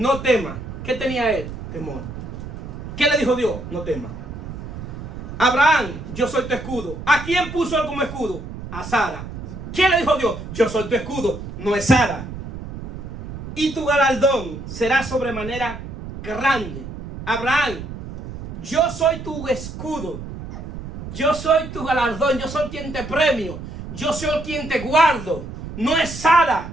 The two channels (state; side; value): noise; right; rumble, 10 dB below the sound